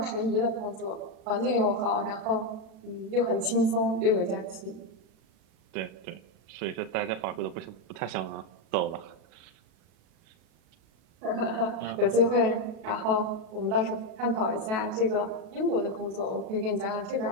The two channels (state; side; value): late; left; 37 ms